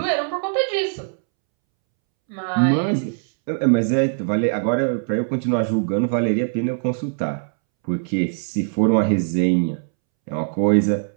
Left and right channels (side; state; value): left; silent; 65 dB below the other